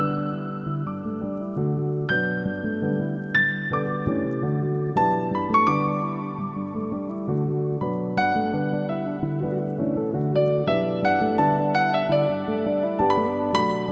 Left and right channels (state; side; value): identical; both; correlation 1.00